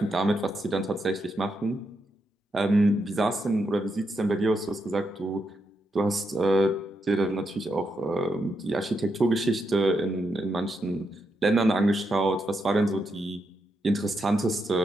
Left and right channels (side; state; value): both; normal; correlation 0.82